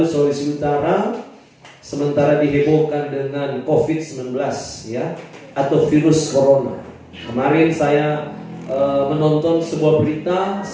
Sulawesi Utara sementara dihebohkan dengan COVID-19 ya, atau virus corona. Kemarin saya menonton sebuah berita,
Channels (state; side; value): identical; both; correlation 1.00